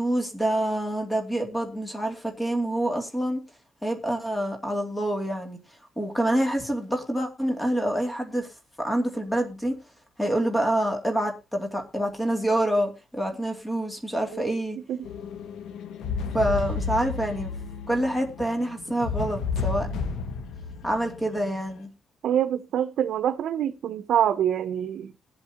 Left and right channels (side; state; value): both; normal; correlation 0.82